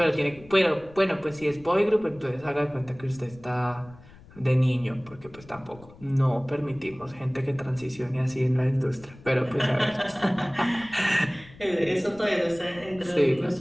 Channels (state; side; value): noise; left; rumble, 22 dB below the sound